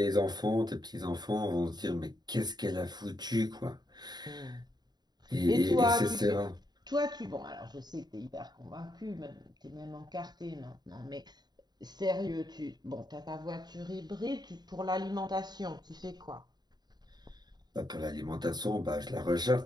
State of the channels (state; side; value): late; left; 0.20 ms